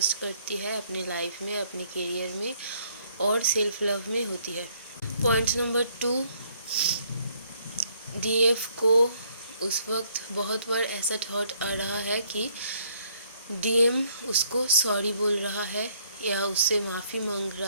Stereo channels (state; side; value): inverted; both; correlation -0.66